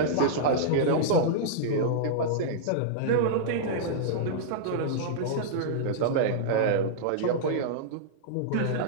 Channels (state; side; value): different; both; correlation -0.02